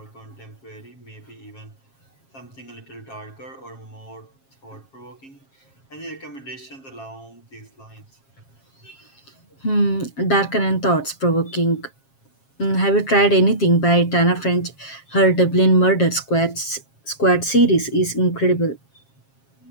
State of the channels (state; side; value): late; right; 7.4 ms